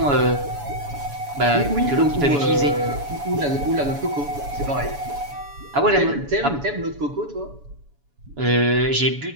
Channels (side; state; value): left; late; 7.0 ms